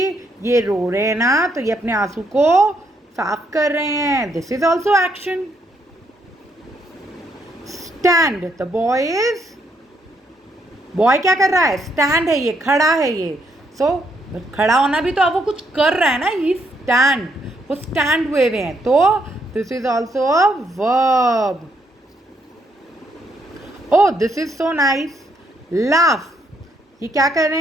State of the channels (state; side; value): normal; both; correlation 0.74